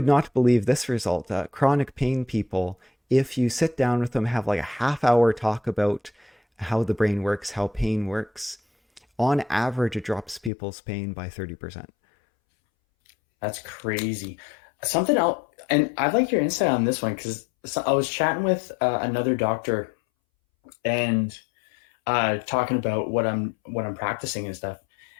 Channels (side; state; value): right; drops out; at 10.5 s